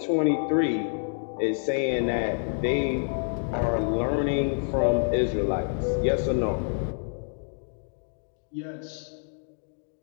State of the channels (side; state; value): right; silent; digital silence